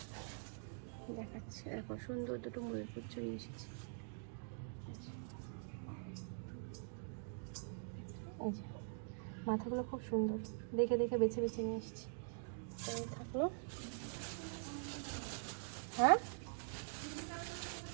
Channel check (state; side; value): silent; left; digital silence